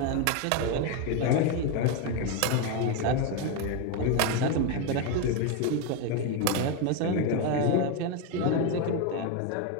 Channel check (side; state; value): both; different; correlation 0.02